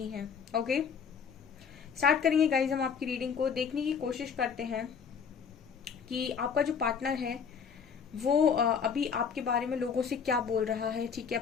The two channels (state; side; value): quieter; right; 6.5 dB